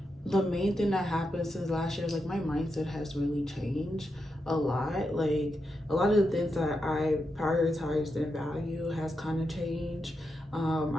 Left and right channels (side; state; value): both; normal; correlation 0.86